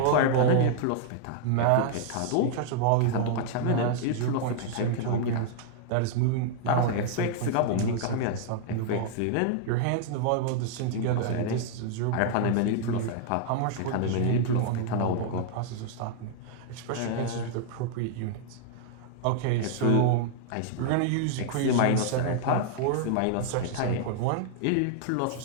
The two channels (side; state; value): both; different; correlation -0.01